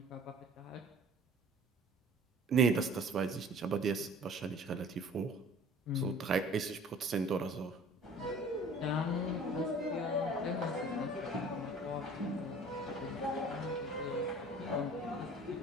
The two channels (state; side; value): normal; both; correlation 0.48